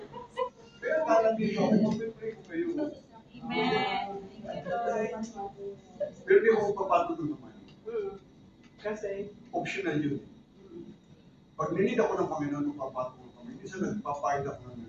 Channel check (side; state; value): both; identical; correlation 1.00